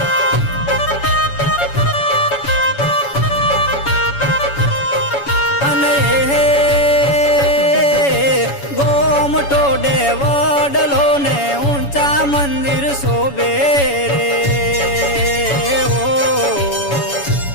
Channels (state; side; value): late; right; 7.1 ms